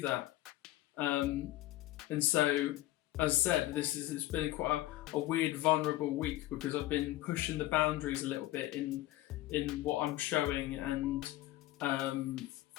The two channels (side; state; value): right; quieter; 16.2 dB